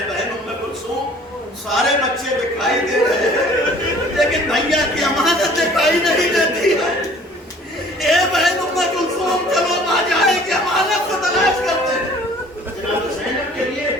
بہن ام کلثوم سارے بچے دکھائی دے رہے ہیں لیکن بھیا کی امانت دکھائی نہیں دیتی ہے. اے بہن ام کلثوم چلو آ جائے کہ امانت کو تلاش کرتے ہیں. جناب زینب کے لیے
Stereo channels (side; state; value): both; normal; correlation 0.52